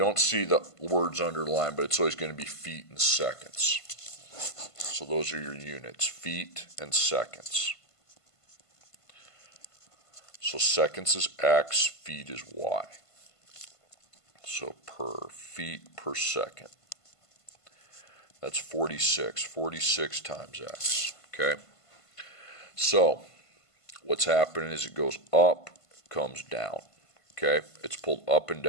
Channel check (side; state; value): right; late; 1.5 ms